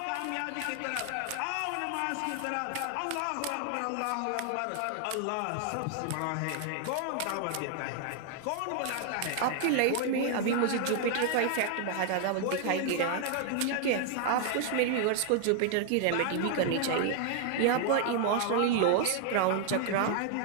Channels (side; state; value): both; different; correlation 0.00